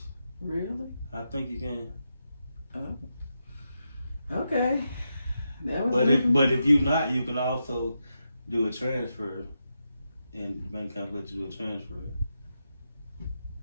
Really? I think you can. Oh. Okay. But if you're not, you can also do a transfer, and the bank account let you do a transfer. I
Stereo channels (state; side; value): inverted; both; correlation -0.86